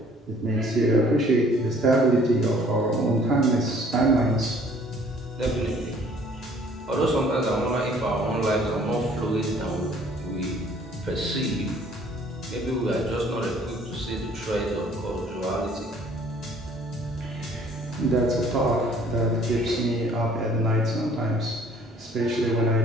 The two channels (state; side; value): normal; both; correlation 0.57